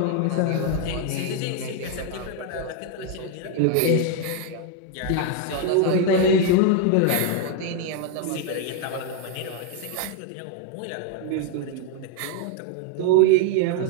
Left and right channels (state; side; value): different; both; correlation 0.01